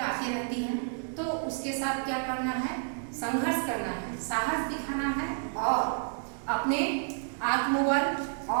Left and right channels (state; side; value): silent; left; 58 dB below the other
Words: आती रहती हैं, तो उसके साथ क्या करना है? संघर्ष करना है, साहस दिखाना है और अपने आत्मबल